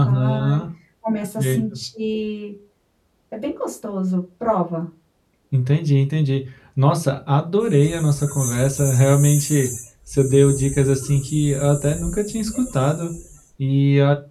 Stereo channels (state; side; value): identical; both; correlation 1.00